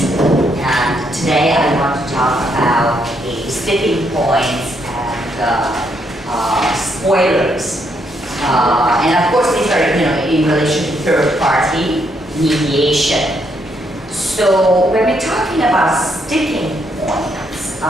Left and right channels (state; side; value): normal; both; correlation 0.75